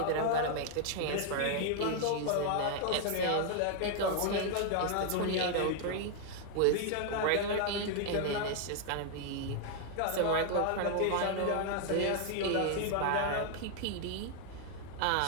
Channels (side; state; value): both; different; correlation 0.00